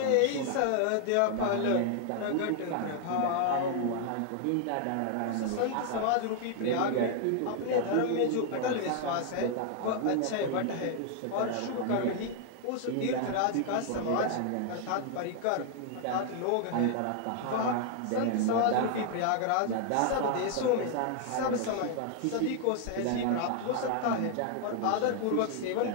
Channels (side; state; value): both; different; correlation 0.00